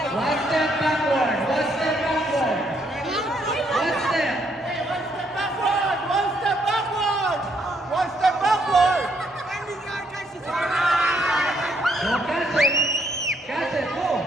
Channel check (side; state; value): both; normal; correlation 0.71